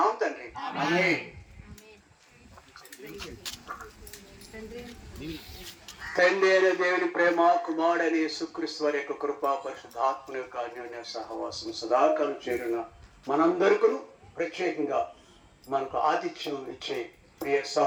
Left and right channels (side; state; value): both; identical; correlation 1.00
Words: తండ్రి. ఆమేన్. తండ్రి అయిన దేవుని ప్రేమ, కుమారుడైన యేసుక్రీస్తు వారి యొక్క కృప, పరిశుద్ధాత్మ యొక్క అన్యోన్య సహవాసం సదాకాలం చేరిన మనందరికీ ప్రత్యేకంగా మనకు ఆతిథ్యం ఇచ్చే ప్రియ